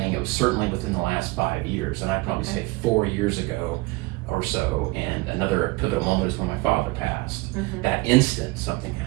it was certainly within the last 5 years, and I'd probably say 4 years ago or so. And another pivotal moment is when my father passed. That instant, something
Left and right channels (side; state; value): left; quieter; 23.6 dB